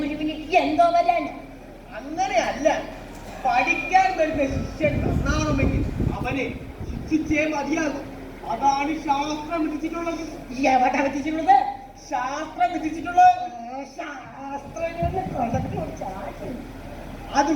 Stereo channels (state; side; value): identical; both; correlation 1.00